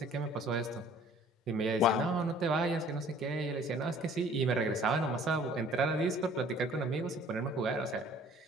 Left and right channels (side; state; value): both; normal; correlation 0.53